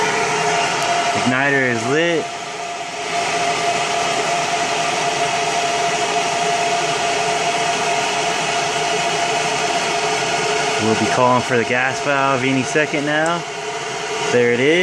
Igniter is lit. We'll be calling for the gas valve any second now. There it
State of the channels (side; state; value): both; identical; correlation 1.00